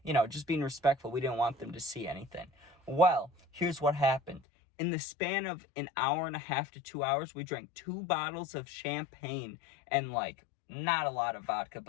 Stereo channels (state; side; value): drops out; right; at 4.4 s